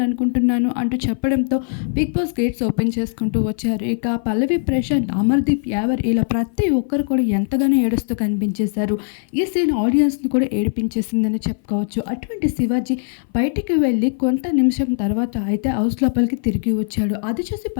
అంటూ చెప్పడంతో బిగ్ బాస్ గేట్స్ ఓపెన్ చేసుకుంటూ వచ్చారు. ఇక పల్లవి ప్రశాంత్, అమర్దీప్ యావర్ ఇలా ప్రతి ఒక్కరు కూడా ఎంతగానో ఏడుస్తూ కనిపించేశారు. ఈ సీన్ ఆడియన్స్ని కూడా ఏడిపించేసిందని చెప్పుకోవచ్చు. అటువంటి శివాజీ బయటికి వెళ్ళి కొంత నిమిషం తర్వాత అయితే హౌస్ లోపలికి తిరిగి వచ్చాడు. అది చూసి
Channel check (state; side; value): silent; right; 57 dB below the other